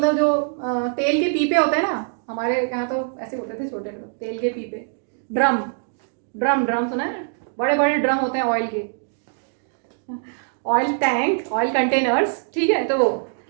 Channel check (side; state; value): left; silent; digital silence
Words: जो तेल के पीपे होते हैं ना, हमारे यहाँ तो ऐसे होते थे छोटे तेल के पीपे. ड्रम सुना है? बड़े बड़े ड्रम होते हैं ऑयल के. ऑयल टैंक, ऑयल कंटेनर्स, ठीक है, तो वो